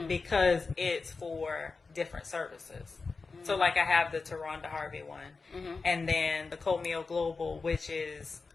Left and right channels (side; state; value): right; quieter; 4.3 dB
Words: because it's for different services. So like I have the Taronda Harvey one, and then the Comeo Global, which is